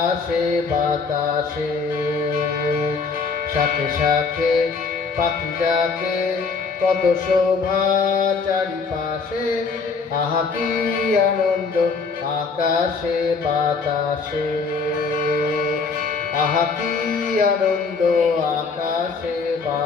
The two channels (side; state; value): right; quieter; 4.8 dB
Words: বাতাসে, শাখে শাখে পাখি ডাকে কত শোভা চারিপাশে। আহা কি আনন্দ আকাশে বাতাসে, আহা কি আনন্দ আকাশে